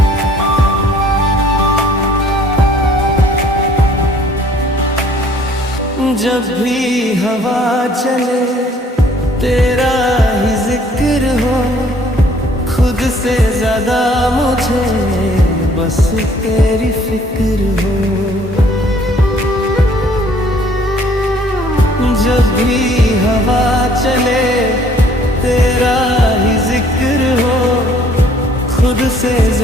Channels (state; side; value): normal; both; correlation 0.59